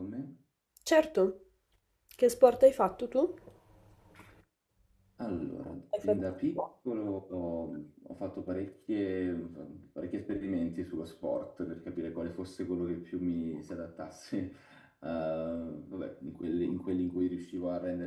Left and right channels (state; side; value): identical; both; correlation 1.00